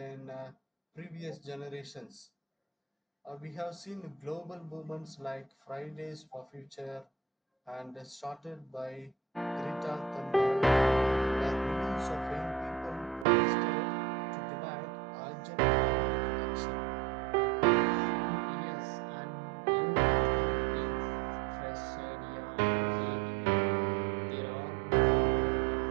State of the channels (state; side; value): drops out; left; at 13.2 s